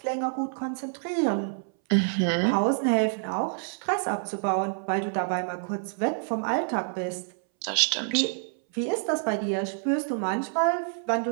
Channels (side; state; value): left; silent; 60 dB below the other